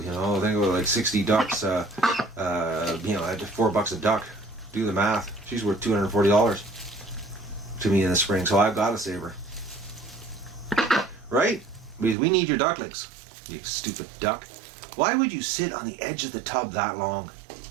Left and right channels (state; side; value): drops out; left; at 12.2 s